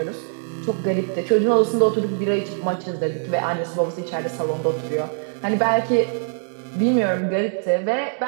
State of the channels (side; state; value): left; silent; 64 dB below the other